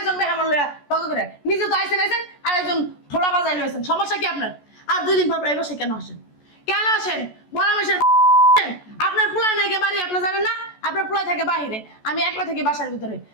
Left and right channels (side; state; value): right; late; 14 ms